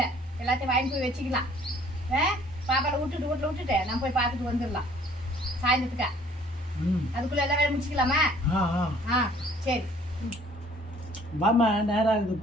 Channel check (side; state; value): both; normal; correlation 0.56